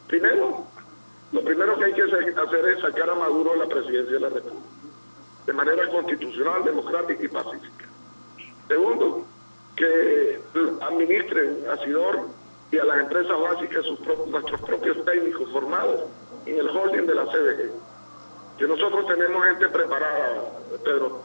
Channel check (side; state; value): both; inverted; correlation -1.00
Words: Primero, lo primero que hay que hacer es sacar a Maduro de la presidencia de la República, de manera constitucional, democrática y pacífica. Segundo, que administren a Sidor y a las empresas básicas nuestros propios técnicos formados en el holding de la CDG. Que nosotros tenemos gente preparada, Pedro,